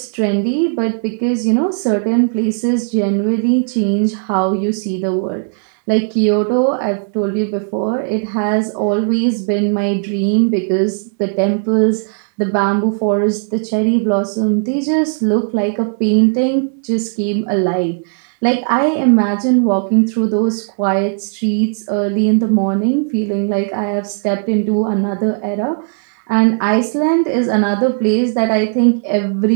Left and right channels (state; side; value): silent; left; digital silence